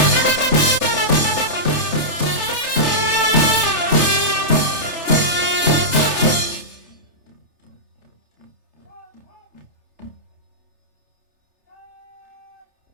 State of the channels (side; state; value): left; late; 3.3 ms